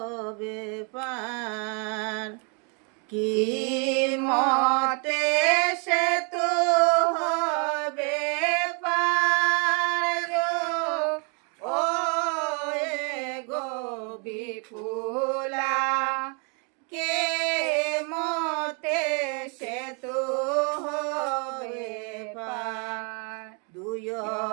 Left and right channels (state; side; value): quieter; left; 37.1 dB